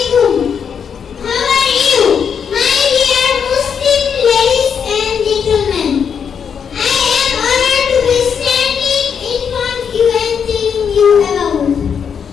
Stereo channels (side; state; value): right; quieter; 7.1 dB